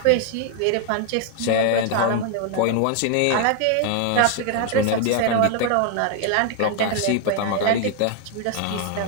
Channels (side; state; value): both; different; correlation 0.00